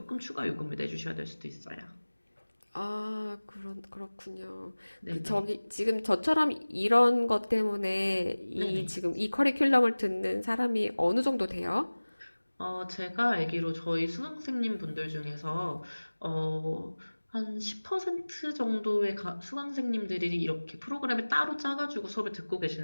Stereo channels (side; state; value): both; inverted; correlation -1.00